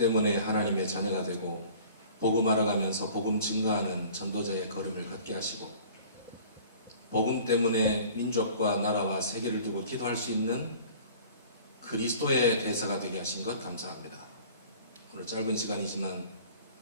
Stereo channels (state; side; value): inverted; both; correlation -0.47